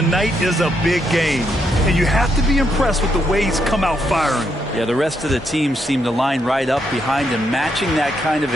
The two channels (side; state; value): both; normal; correlation 0.77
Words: is a big game, and you have to be impressed with the way he's come out firing. Yeah, the rest of the team seem to line right up behind him, matching that kind of